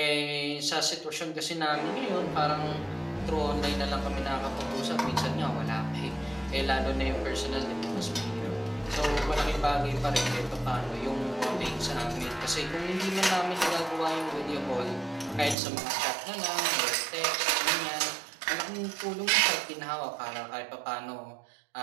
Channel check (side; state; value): left; drops out; at 15.6 s